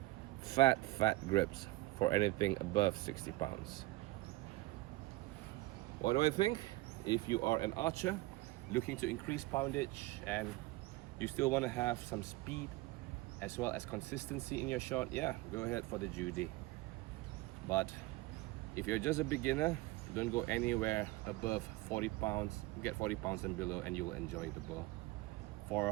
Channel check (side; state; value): left; quieter; 20.0 dB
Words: grips for anything above 60 pounds. What do I think? If you are an archer looking to increase poundage and you still want to have some speed as well as consistency in your shot, yeah, go ahead for the Judy. But if you're just a beginner, don't go anywhere above 40 pounds. Get 40 pounds and below and you will enjoy the bow.